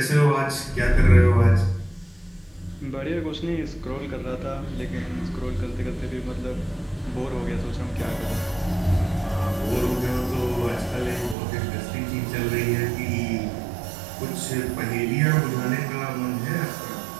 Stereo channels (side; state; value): left; drops out; at 11.4 s